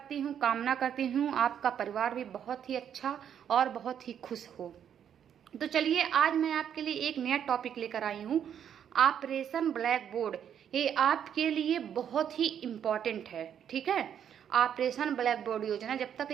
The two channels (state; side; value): quieter; left; 8.9 dB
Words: हूँ, कामना करती हूँ आपका परिवार भी बहुत ही अच्छा और बहुत ही खुश हो। तो चलिए, आज मैं आपके लिए एक नया टॉपिक लेकर आई हूँ, ऑपरेशन ब्लैक बोर्ड। ये आपके लिए बहुत ही इम्पॉर्टेंट है, ठीक है। ऑपरेशन ब्लैक बोर्ड योजना, जब तक